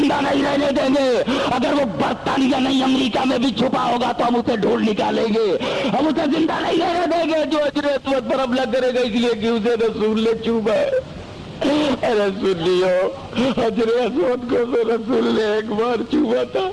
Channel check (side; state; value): both; identical; correlation 1.00